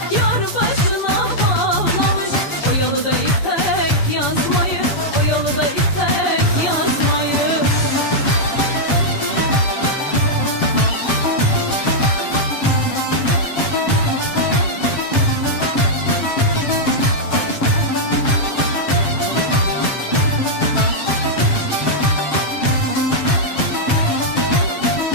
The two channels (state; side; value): late; right; 7.4 ms